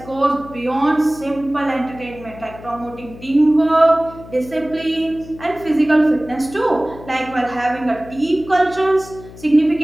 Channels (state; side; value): noise; left; hum, 17 dB below the sound